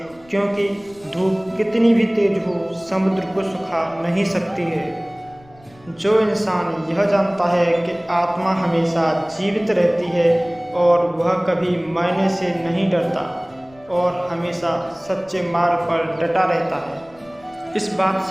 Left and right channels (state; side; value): noise; left; rumble, 27 dB below the sound